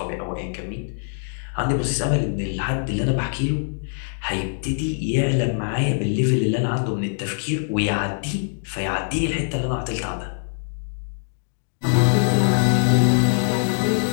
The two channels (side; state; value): right; silent; digital silence